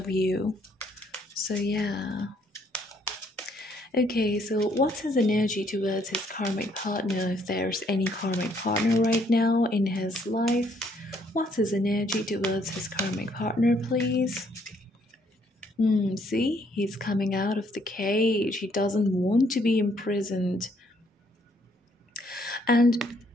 you. So yeah. Okay, so what's his energy towards his karmic partner, if there's any karmic partner right now in his life? What's his energy towards his karmic partner, please? See, he's coming out of the cage. He doesn't want to be imprisoned. And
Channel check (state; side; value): normal; both; correlation 0.68